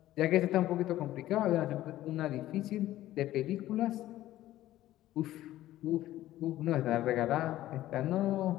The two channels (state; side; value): quieter; right; 14.6 dB